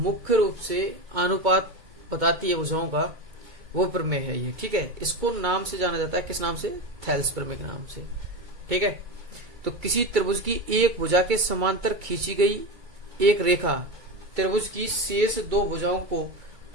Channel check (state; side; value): late; left; 2.3 ms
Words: रूप से अनुपात बताती है भुजाओं का, वो प्रमेय है ये। ठीक है, इसको नाम से जाना जाता है, किस नाम से? थेल्स प्रमेय के नाम से। ठीक है, तो किसी त्रिभुज की एक भुजा के समांतर खींची गई एक रेखा त्रिभुज की शेष दो भुजाओं को